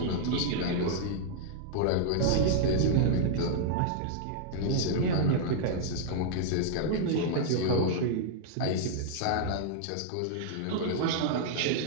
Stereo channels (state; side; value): different; both; correlation -0.01